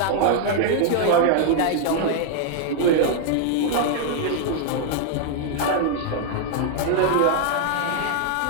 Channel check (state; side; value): different; both; correlation -0.01